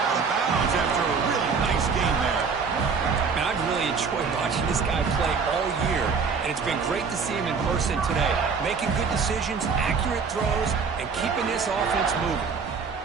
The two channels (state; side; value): quieter; left; 5.4 dB